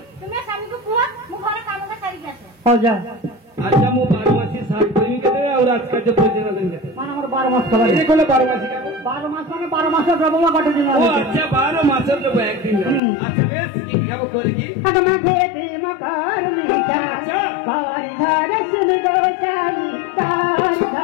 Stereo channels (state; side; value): drops out; right; at 13.0 s